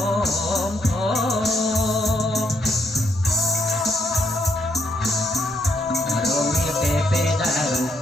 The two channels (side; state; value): both; normal; correlation 0.74